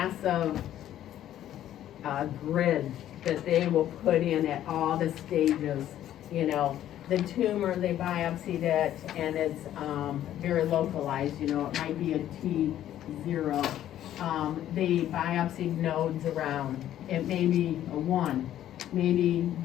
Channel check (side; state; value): right; quieter; 11.9 dB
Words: grid that they will put in at all the stages, you know. The tumor, they biopsied it, and it's very localized, you know, it might be a T0. They biopsied nodes around, it may be a 1. Maybe